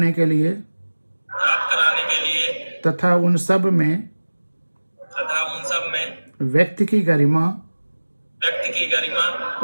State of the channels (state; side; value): inverted; both; correlation -1.00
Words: के लिए तथा उन सब में व्यक्ति की गरिमा